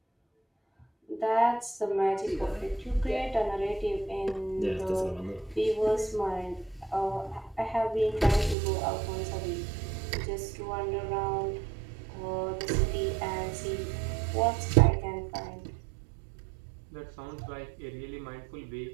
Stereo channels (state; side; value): drops out; left; at 8.6 s